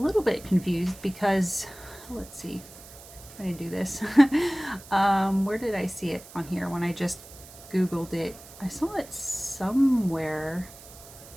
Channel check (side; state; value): right; noise; hiss, 19 dB below the sound